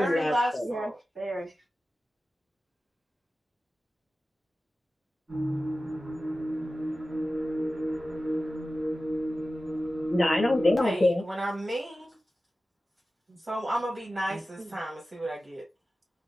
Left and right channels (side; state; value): both; normal; correlation 0.95